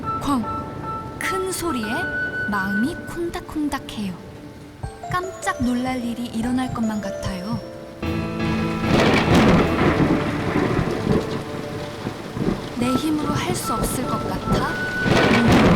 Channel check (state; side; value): identical; both; correlation 1.00